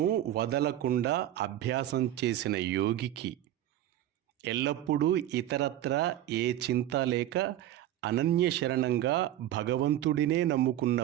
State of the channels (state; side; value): quieter; left; 13.0 dB